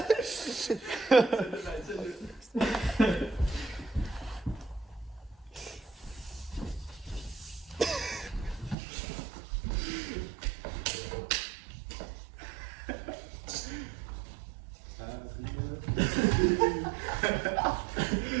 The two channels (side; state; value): left; drops out; at 8.8 s